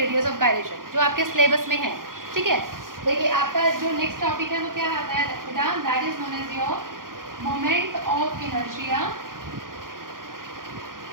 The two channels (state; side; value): late; left; 0.90 ms